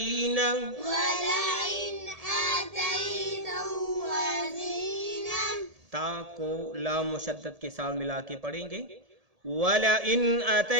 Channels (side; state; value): left; late; 1.7 ms